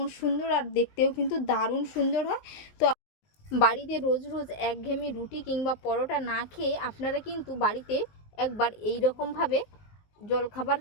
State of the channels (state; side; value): late; right; 19 ms